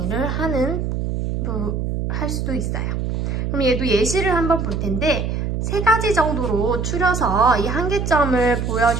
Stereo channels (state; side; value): noise; right; hum, 2 dB below the sound